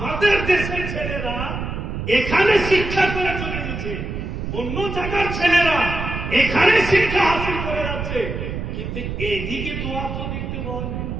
দেশের ছেলেরা এখানে শিক্ষা করে চলে গেছে, অন্য জায়গার ছেলেরা এখানে শিক্ষা হাসিল করে যাচ্ছে, কিন্তু এদিকে তো অত দেখতে পাওয়া যায় না,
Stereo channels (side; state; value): right; noise; rumble, 5 dB below the sound